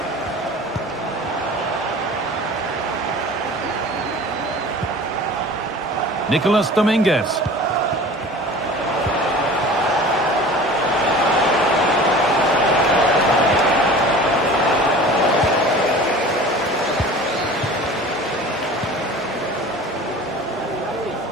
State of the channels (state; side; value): normal; both; correlation 0.41